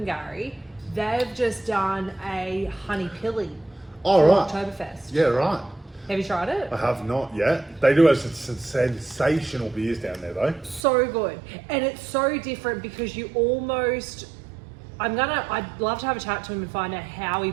they've just done a honey pilly for Oktoberfest. Yeah, right. Have you tried it? I have not yet. They do have some sensational beers down there though. So good. And it's so different because you almost, I'd love to have a chat to him and find out how he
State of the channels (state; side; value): drops out; left; at 10.9 s